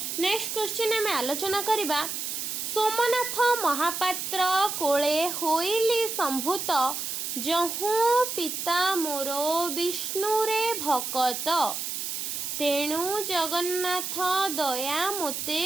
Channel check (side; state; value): right; noise; hiss, 4 dB below the sound